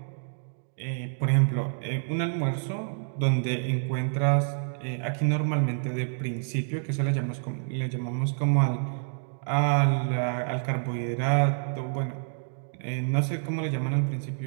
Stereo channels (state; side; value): silent; left; digital silence